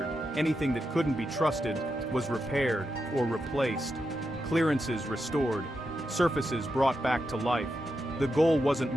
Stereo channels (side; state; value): both; normal; correlation 0.86